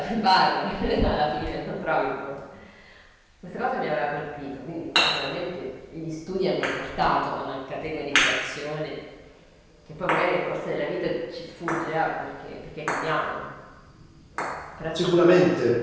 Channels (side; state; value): both; identical; correlation 1.00